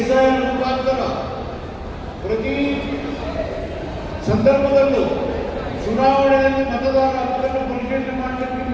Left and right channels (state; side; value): identical; both; correlation 1.00